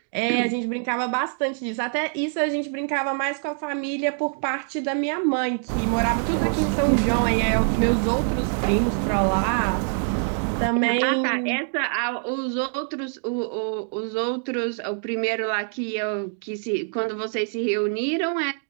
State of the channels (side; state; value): left; silent; 62 dB below the other